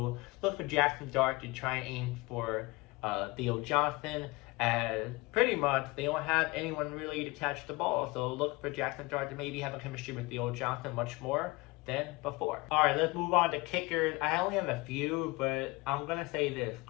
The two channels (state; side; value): quieter; right; 23.2 dB